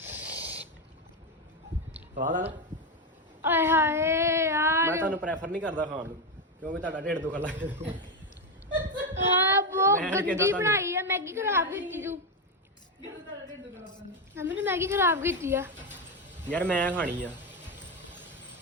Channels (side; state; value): both; normal; correlation 0.09